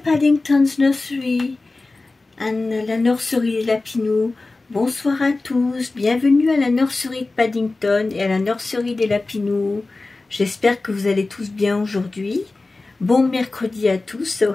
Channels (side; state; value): right; quieter; 3.3 dB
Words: Nursery and la nurserie des Lapinous. Bonsoir à tous, bienvenue à la nurserie de Paddington et à la nurserie des Lapinous. J'espère que vous allez tous bien aujourd'hui. Bon mercredi à tous, so